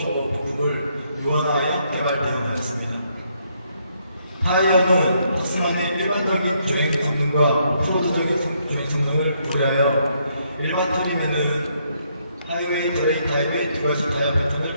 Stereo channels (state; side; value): inverted; both; correlation -0.73